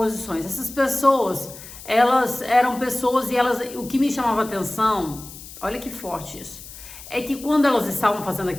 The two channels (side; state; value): left; noise; hiss, 15 dB below the sound